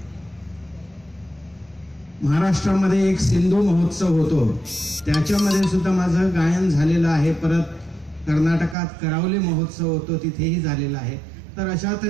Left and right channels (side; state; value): left; drops out; at 8.8 s